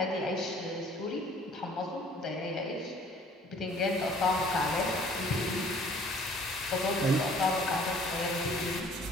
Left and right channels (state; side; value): normal; both; correlation 0.55